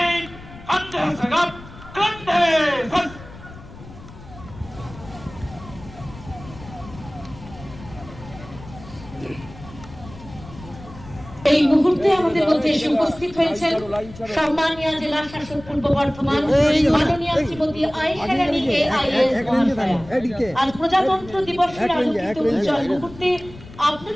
Ande Sagap, Kande Sas. এই মুহূর্তে আমাদের মধ্যে এসে উপস্থিত হয়েছেন সম্মানীয় জেলা শাসক পূর্ব বর্ধমান মাননীয় শ্রীমতী আয়েশা রানী AIS মহাশয়া। আজ প্রজাতন্ত্র দিবসের আলোকিত উজ্জ্বল মুহূর্তে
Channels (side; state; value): left; noise; rumble, 17 dB below the sound